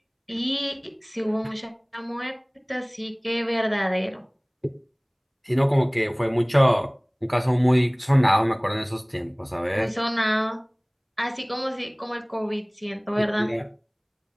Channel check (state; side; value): identical; both; correlation 1.00